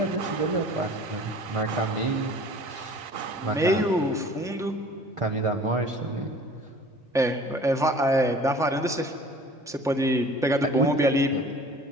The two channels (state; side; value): normal; both; correlation 0.47